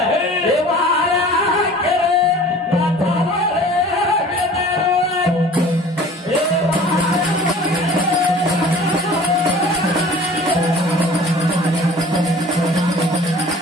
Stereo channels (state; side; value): normal; both; correlation 0.46